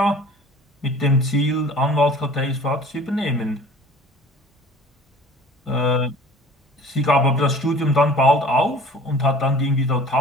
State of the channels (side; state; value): both; normal; correlation 0.46